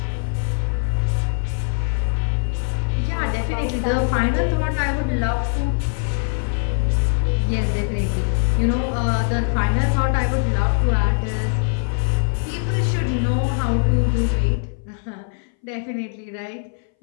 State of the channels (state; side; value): silent; right; 62 dB below the other